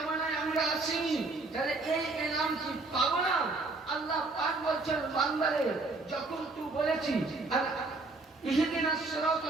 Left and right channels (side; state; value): left; quieter; 3.5 dB